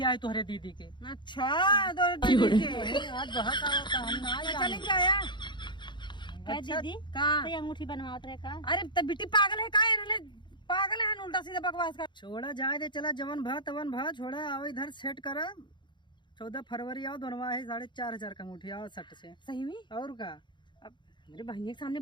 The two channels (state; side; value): late; right; 0.22 ms